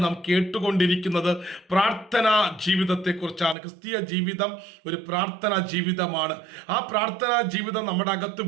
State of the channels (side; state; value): left; drops out; at 3.6 s